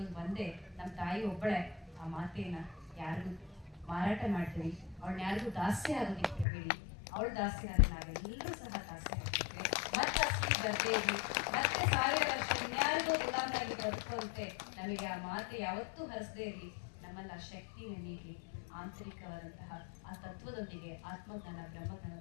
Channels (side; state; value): right; drops out; at 6.5 s